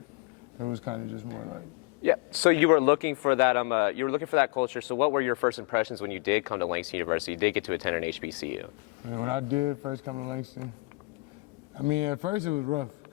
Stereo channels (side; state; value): right; quieter; 26.7 dB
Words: It was kind of just more like. Yeah. So you were looking for that. You were looking for that culture. So what were your first impressions when you did come to Langston University? You did get to attend an HBCU. And when I did first come to Langston, I mean, at first it was rough